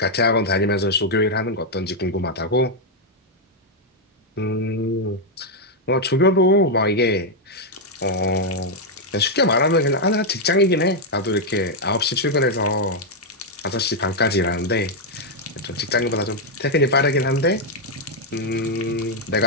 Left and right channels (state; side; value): normal; both; correlation -0.01